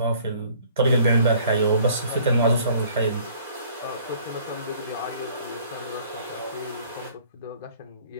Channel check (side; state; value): both; inverted; correlation -0.55